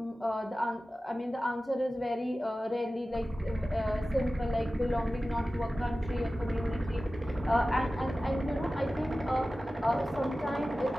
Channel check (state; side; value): normal; both; correlation 0.95